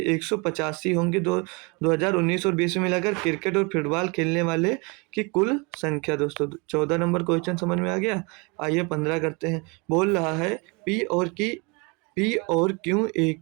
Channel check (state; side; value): quieter; left; 29.7 dB